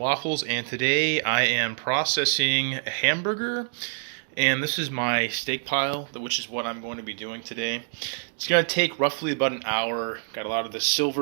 and today I am processing a hamburger. And this is my steak pile, which is what I'm going to be doing today. It's going to take roughly about an hour. Got a lot of the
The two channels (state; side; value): silent; left; digital silence